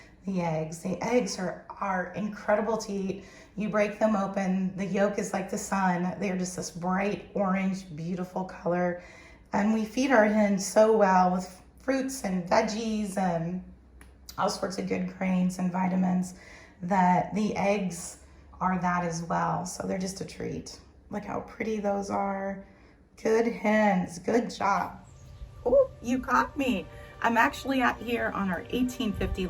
The eggs. The eggs are incredible to eat. You break them open, the yolk is like the sun. They're just this bright orange, beautiful color. And we feed our hens so well with fruits and veggies and all sorts of good grains and vitamins that the eggs are that as well. So they're just a treat. Look how pretty those are. Good hens, good job. Oh, you caught me. I'm actually out here on our 1850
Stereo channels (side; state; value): both; identical; correlation 1.00